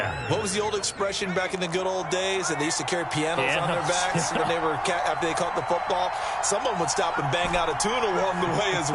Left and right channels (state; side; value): identical; both; correlation 1.00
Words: What was the old expression back in the good old days? That they used to carry pianos on their backs when they were after they caught the football. Someone would stop and bang out a tune along the way as